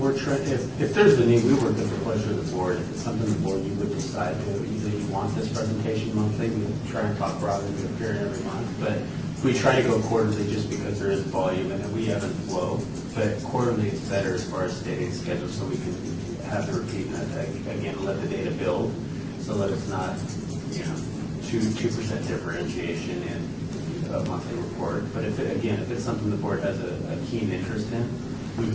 trying, if there's a need, we work at the pleasure of the board. If it's something the board you would decide to, either you want this presentation monthly, we try and talk broadly to appear every month, but we try to go quarterly just because there is volume and we ebb and flow. But quarterly is better as far as stating schedule, so we can have the repeat and again, let the data build, so that it's not, 2% differentiation in a monthly report. But if it's something the board has a keen interest in, we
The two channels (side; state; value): both; identical; correlation 1.00